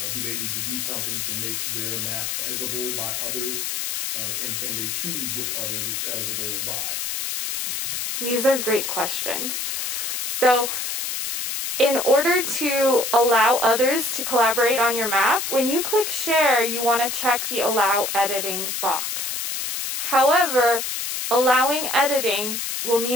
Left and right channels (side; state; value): left; noise; hiss, 3 dB below the sound